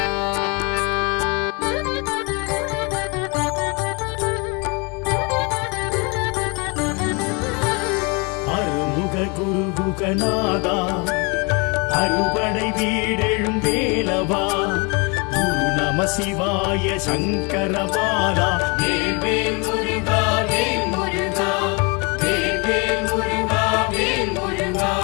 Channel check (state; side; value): quieter; right; 30.9 dB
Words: குருகுகநாதா அறுபடை வீடெழும் வேலவா குரு நம சிவாய சங்கரபாலா வேல் முருகா வேல் முருகா வேல் முருகா வேல் முருகா